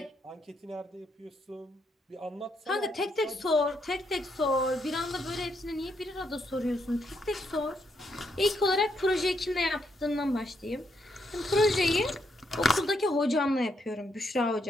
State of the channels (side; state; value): both; normal; correlation 0.77